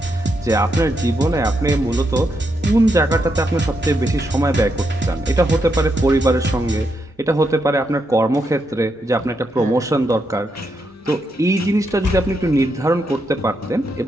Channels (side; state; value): both; normal; correlation 0.81